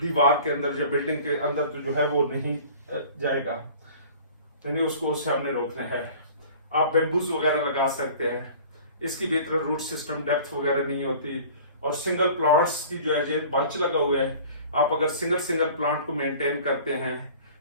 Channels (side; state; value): both; inverted; correlation -0.45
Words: के अंदर या बिल्डिंग के अंदर तो जो है वो नहीं जाएगा, यानी उसको उससे हमने रोकना है। आप बेम्बूज वगैरह लगा सकते हैं, इसकी बेहतर रूट सिस्टम डेप्थ वगैरह नहीं होती, और सिंगल प्लांट्स की जो है बंच लगा हुआ है, आप अगर सिंगल प्लांट को मेंटेन करते हैं